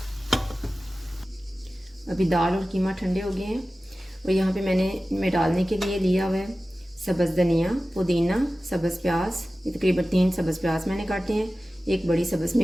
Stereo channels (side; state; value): both; normal; correlation 0.96